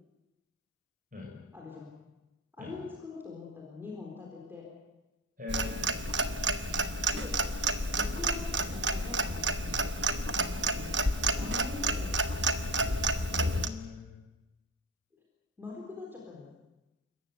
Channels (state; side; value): normal; both; correlation 0.24